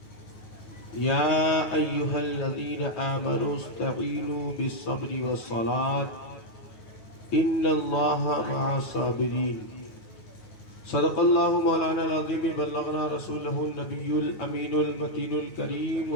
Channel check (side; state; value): right; late; 9.5 ms